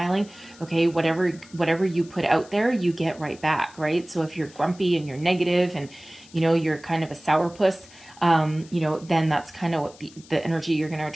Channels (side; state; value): left; noise; hiss, 23 dB below the sound